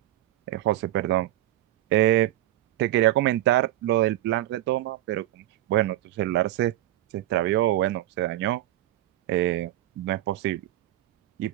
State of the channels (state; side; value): quieter; left; 14.6 dB